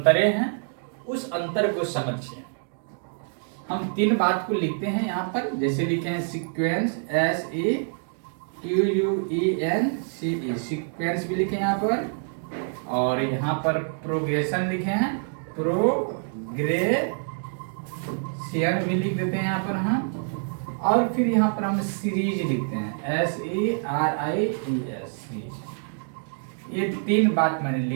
हैं। उस अंतर को समझिए। हम तीन बात को लिखते हैं यहाँ पर, जैसे लिखे हैं सीक्वेंस, SEQUENCE सीक्वेंस भी लिखे यहाँ पर, और यहाँ पर प्रोग्रेशन लिखे हैं, प्रोग्रेशन भी लिख देते हैं यहाँ पर हम, और फिर यहाँ पर हम सीरीज लिखते हैं, SERIES सीरीज। ये तीन बात मैंने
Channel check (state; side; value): silent; left; 61 dB below the other